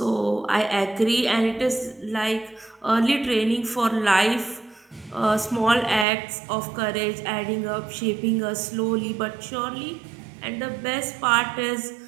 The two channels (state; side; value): drops out; left; at 6.1 s